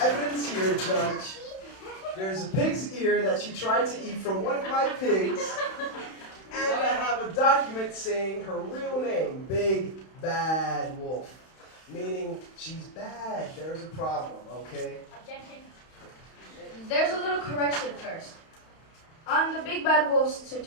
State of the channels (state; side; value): late; right; 31 ms